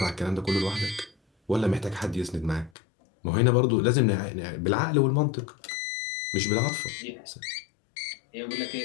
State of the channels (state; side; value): drops out; right; at 2.7 s